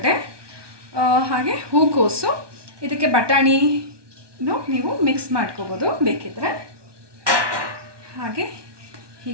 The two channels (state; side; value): late; left; 1.2 ms